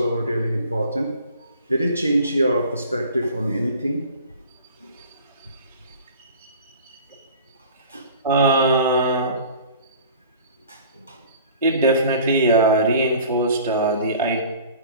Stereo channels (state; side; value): inverted; both; correlation -0.46